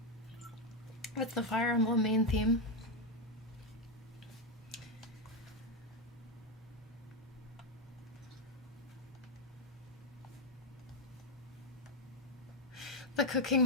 What's the Fire Emblem main theme? The Cooking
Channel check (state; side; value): normal; both; correlation 0.05